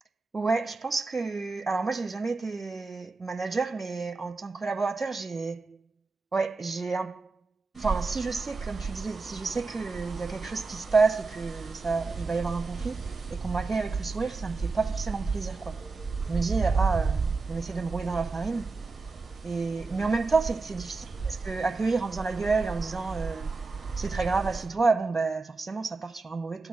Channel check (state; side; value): quieter; left; 3.9 dB